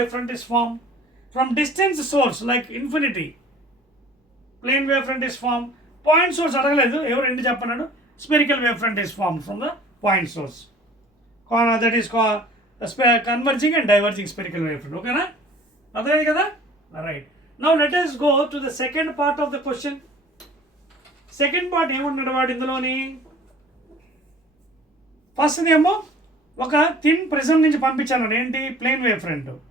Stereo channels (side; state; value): both; normal; correlation 0.49